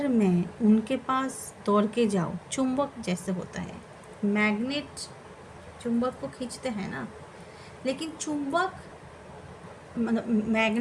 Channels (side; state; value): both; identical; correlation 1.00